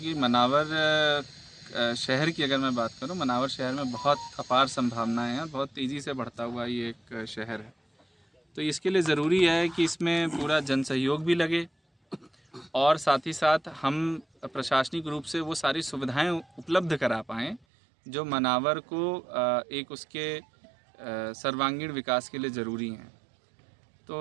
मनावर शहर की अगर मैं बात करूं, मनावर शहर में बहुत अपार संभावनाएं हैं, बहुत तेज़ी से बढ़ता हुआ ये एक शहर है। तो इसके लिए ज़रूरी है कि इसमें पूरा जन सहयोग भी लगे और साथ ही साथ हम प्रशासनिक रूप से वो सारी सुविधाएं उपलब्ध करा पाएँ जो मनावर को एक उसके सर्वांगीण विकास के लिए ज़रूरी हैं।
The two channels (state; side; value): drops out; left; at 17.7 s